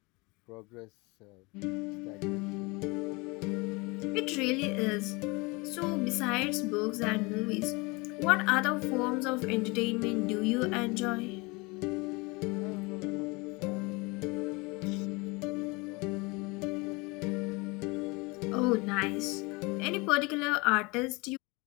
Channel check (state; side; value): quieter; right; 26.3 dB